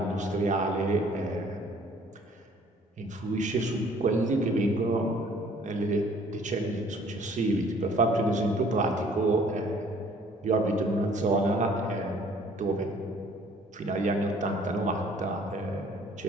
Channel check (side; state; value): both; normal; correlation 0.57